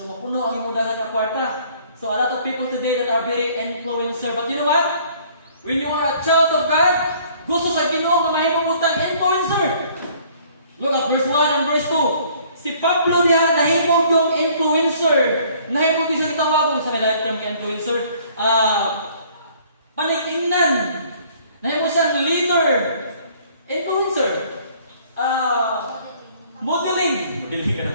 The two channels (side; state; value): both; inverted; correlation -0.57